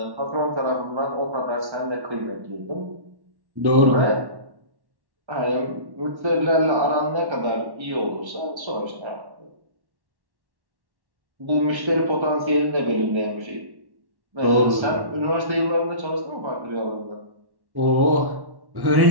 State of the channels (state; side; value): late; left; 1.1 ms